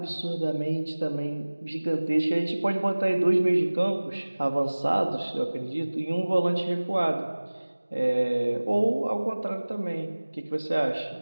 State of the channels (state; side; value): inverted; both; correlation -1.00